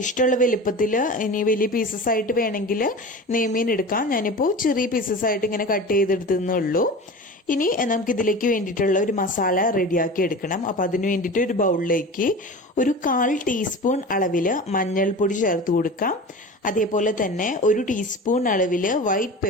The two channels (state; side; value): normal; both; correlation 0.33